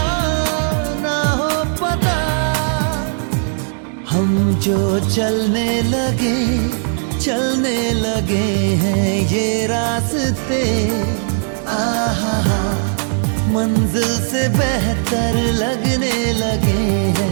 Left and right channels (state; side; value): silent; left; digital silence